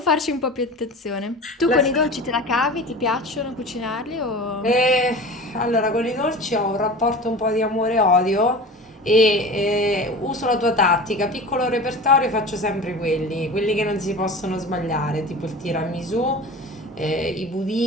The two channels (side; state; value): both; normal; correlation 0.35